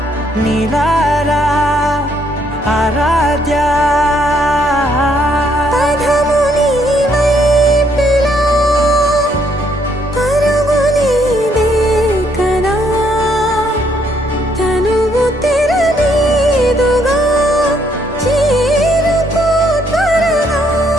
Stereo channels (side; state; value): both; normal; correlation 0.70